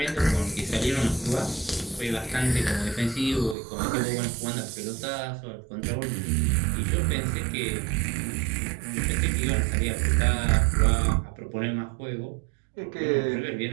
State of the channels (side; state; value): left; drops out; at 3.6 s